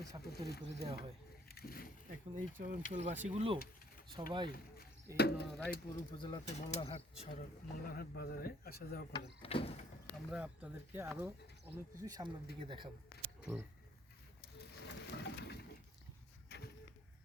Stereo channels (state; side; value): normal; both; correlation 0.62